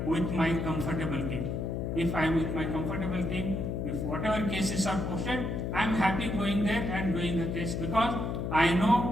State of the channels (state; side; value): noise; left; hum, 2 dB below the sound